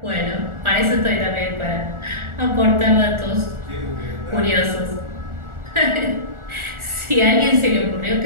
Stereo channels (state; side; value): late; left; 1.4 ms